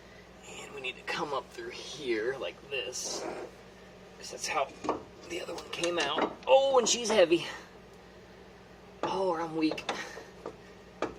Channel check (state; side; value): identical; both; correlation 1.00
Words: and we need to come up through here like this, because that's how the other one came out. Oh, and she's heavy. Oh, or I'm weak.